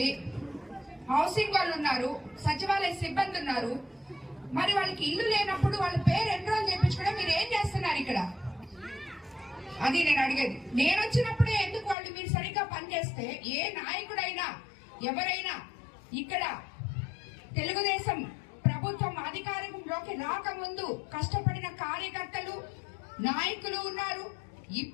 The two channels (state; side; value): drops out; right; at 12.0 s